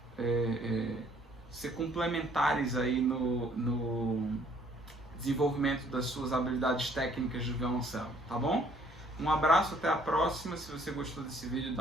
ser complementares aí no desenvolvimento das suas habilidades técnicas de violoncelo, tá bom? Um abraço, até a próxima. Se você gostou desse vídeo,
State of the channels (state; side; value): normal; both; correlation 0.61